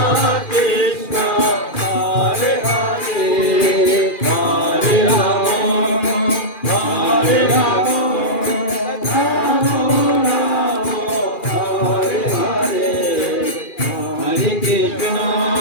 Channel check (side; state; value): right; late; 2.4 ms